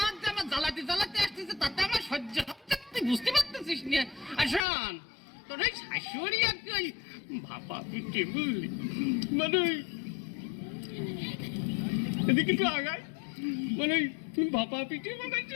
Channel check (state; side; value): drops out; right; at 4.6 s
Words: জামা জ্বালাতে জ্বালাতে আসতেছে, তাতে আমার সহ্য হচ্ছে, তুই বুঝতে পারতেছিস না? আসন তোর ওই শাশুড়ি আর কি ওই ভাপা পিঠে বুঝলি, মানে এদিকে একটু আগায়, মানে ভাপা পিঠে